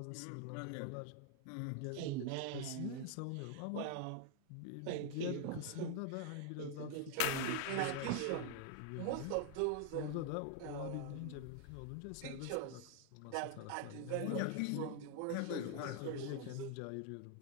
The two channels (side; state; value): both; different; correlation 0.00